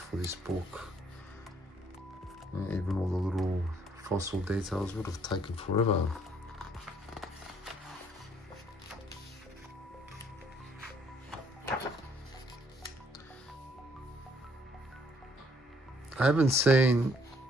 this book. Even all the little fossil details would have taken forever. I haven't seen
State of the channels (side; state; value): both; normal; correlation 0.65